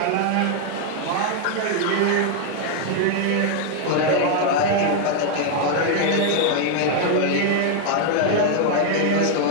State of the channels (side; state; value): both; different; correlation 0.00